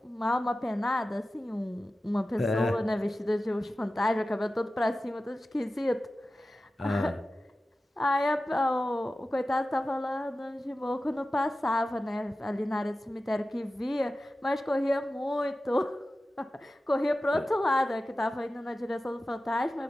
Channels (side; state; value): both; normal; correlation 0.95